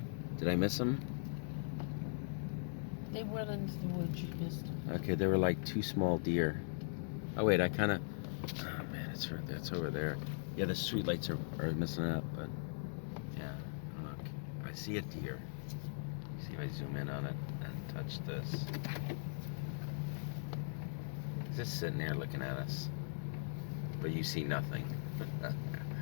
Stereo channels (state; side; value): silent; right; digital silence